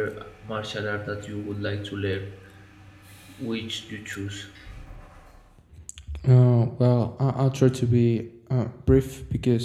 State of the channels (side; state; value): both; identical; correlation 1.00